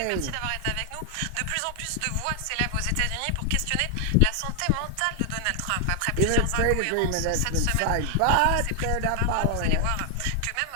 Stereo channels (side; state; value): both; different; correlation 0.00